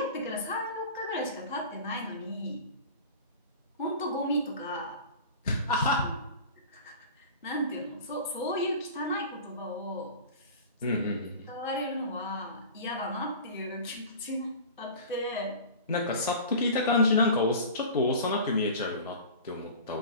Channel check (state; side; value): inverted; both; correlation -0.36